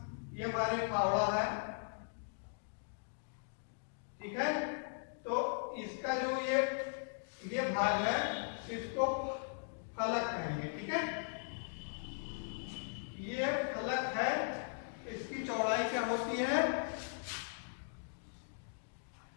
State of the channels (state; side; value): silent; right; digital silence